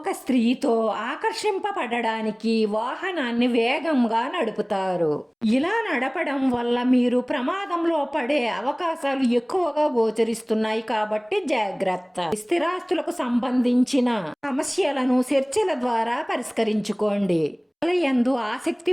స్త్రీతో ఆకర్షింపబడడానికి వాహనాన్ని వేగంగా నడుపుతారు. ఇలా నడపడం వల్ల మీరు ప్రమాదంలో పడే అవకాశాలు ఎక్కువగా గోచరిస్తున్నాయి కాబట్టి జాగ్రత్త. స్థిరాస్తులకు సంబంధించిన సమస్యలను చర్చల ద్వారా పరిష్కరించుకోండి. యందు ఆసక్తి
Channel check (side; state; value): both; identical; correlation 1.00